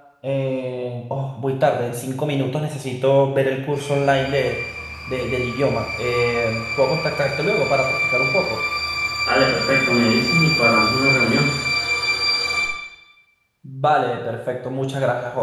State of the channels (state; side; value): identical; both; correlation 1.00